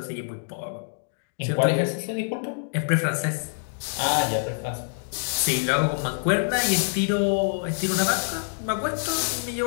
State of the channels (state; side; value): silent; right; digital silence